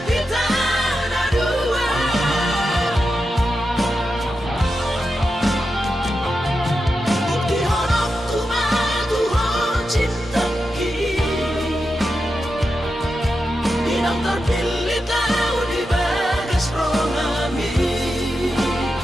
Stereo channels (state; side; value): normal; both; correlation 0.89